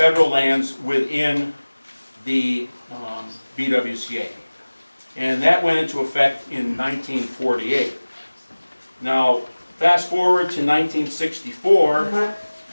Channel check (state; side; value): inverted; both; correlation -1.00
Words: lands within the BWCA. And that went into effect in 1948. Now, fast forward to 1964,